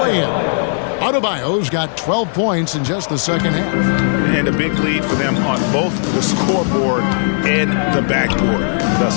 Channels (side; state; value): right; silent; 60 dB below the other